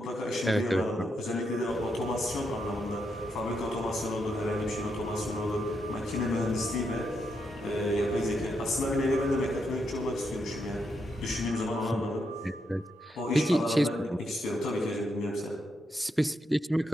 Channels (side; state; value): both; normal; correlation 0.81